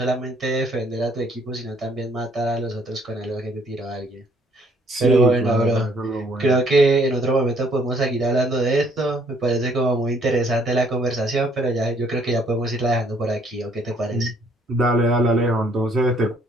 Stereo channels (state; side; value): normal; both; correlation 0.64